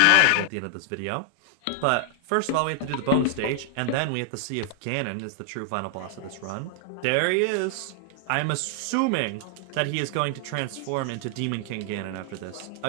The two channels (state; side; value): different; both; correlation 0.00